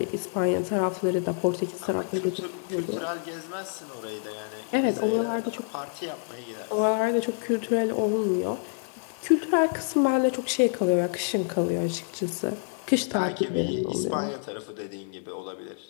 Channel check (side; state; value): right; silent; digital silence